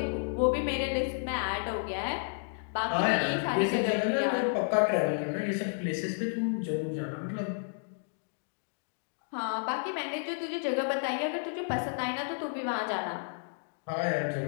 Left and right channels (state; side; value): silent; right; digital silence